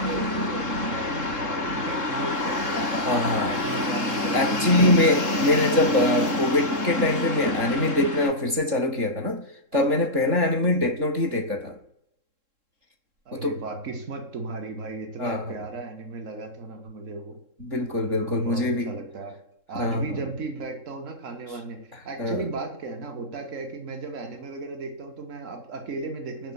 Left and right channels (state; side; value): late; left; 3.7 ms